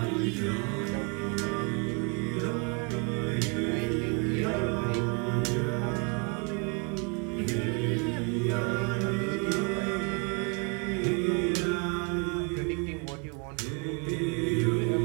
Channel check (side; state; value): left; quieter; 34.1 dB